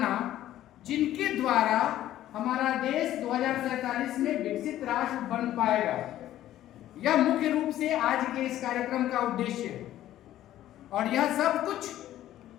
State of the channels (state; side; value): quieter; right; 13.1 dB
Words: जिनके द्वारा हमारा देश 2047 में विकसित राष्ट्र बन पाएगा। यह मुख्य रूप से आज के इस कार्यक्रम का उद्देश्य है और यह सब कुछ